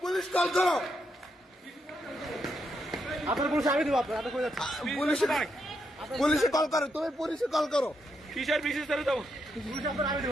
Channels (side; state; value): both; normal; correlation 0.81